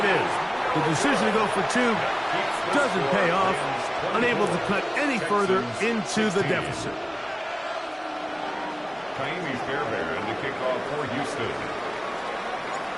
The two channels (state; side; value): identical; both; correlation 1.00